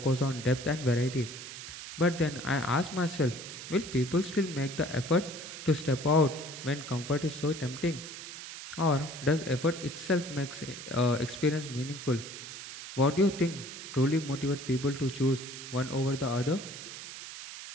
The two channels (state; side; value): noise; right; hiss, 11 dB below the sound